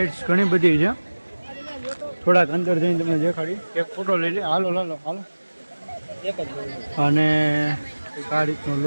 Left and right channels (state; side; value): inverted; both; correlation -1.00